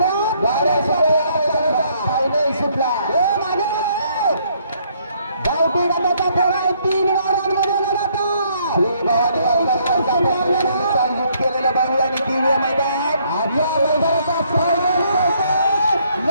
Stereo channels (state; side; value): inverted; both; correlation -0.68